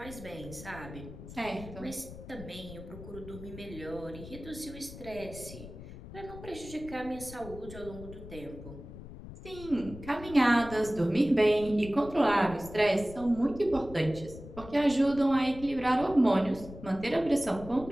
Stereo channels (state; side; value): noise; left; rumble, 14 dB below the sound